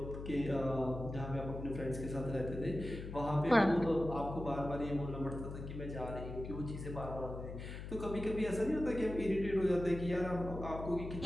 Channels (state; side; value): noise; left; hum, 8 dB below the sound